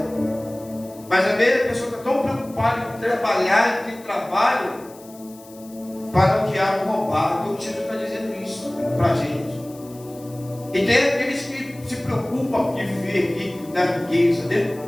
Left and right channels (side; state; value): left; noise; hiss, 23 dB below the sound